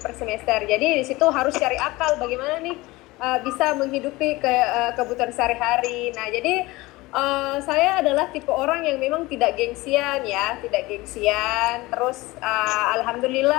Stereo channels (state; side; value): quieter; right; 20.8 dB